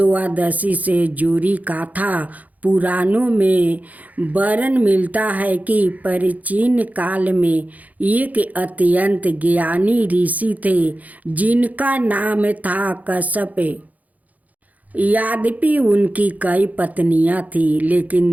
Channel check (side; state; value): left; late; 0.077 ms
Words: से जुड़ी कथा पुराणों में वर्णन मिलता है कि प्राचीन काल में एक अत्यंत ज्ञानी ऋषि थे जिनका नाम था कश्यप। यद्यपि उनकी कई पत्नियां थीं, लेकिन